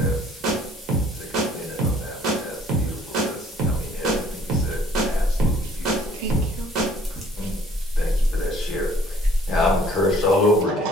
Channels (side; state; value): both; normal; correlation 0.58